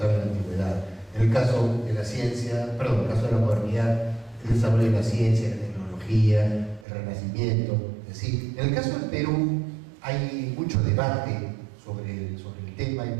en la antigüedad.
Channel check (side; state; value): left; drops out; at 6.9 s